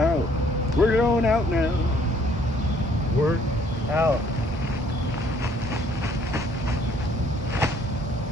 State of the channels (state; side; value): normal; both; correlation 0.62